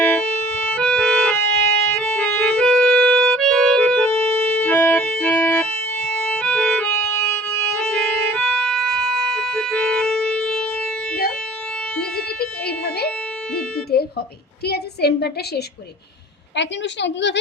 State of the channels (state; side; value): normal; both; correlation 0.51